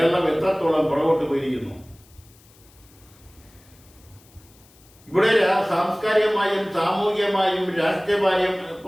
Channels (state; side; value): noise; left; hiss, 28 dB below the sound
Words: എത്രത്തോളം പുറകോട്ട് പോയിരിക്കുന്നു. ഇവിടെ സാംസ്കാരികമായും സാമൂഹികമായും